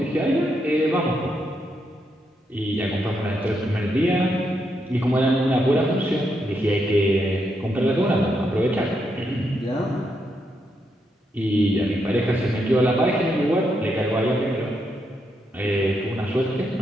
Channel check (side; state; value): both; normal; correlation 0.80